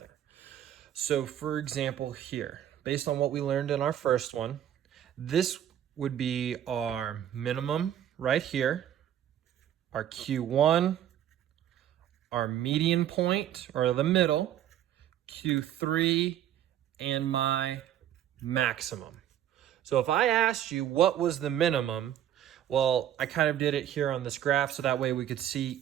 So for example, here, based on what we learned in our first one, this would be our minimum right here, our Q1, our median point, or the middle, Q3, and my maximum. So if I asked you what was the minimum, well, I kind of did it here on this graph so that way we could see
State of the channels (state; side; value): quieter; left; 10.9 dB